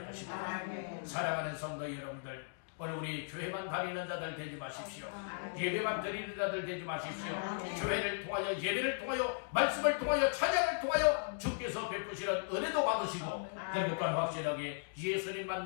것입니다. 사랑하는 성도 여러분들, 오늘 우리 교회만 다니는 자들 되지 마십시오. 예배만 드리는 자들 되지 마십시오. 교회를 통하여, 예배를 통하여, 말씀을 통하여, 찬양을 통하여 주께서 베푸시는 은혜도 받으시고 그리고 또한 확실하게 예수님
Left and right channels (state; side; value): silent; right; digital silence